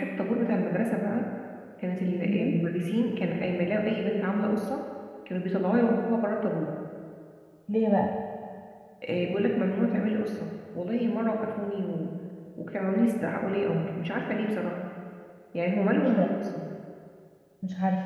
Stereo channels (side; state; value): both; identical; correlation 1.00